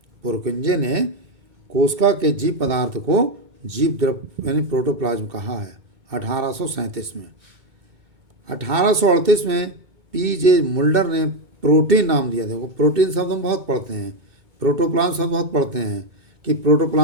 पुरकुंजे ने कोशिका के जीव पदार्थ को जीव द्रव यानी प्रोटोप्लाज्म कहा है, 1837 में। 1838 में पी.जे. मुल्डर ने प्रोटीन नाम दिया। देखो, प्रोटीन शब्द हम बहुत पढ़ते हैं, प्रोटोप्लाज्म शब्द बहुत पढ़ते हैं कि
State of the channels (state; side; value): late; left; 2.2 ms